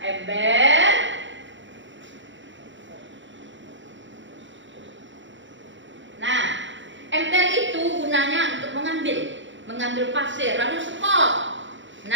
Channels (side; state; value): left; late; 0.54 ms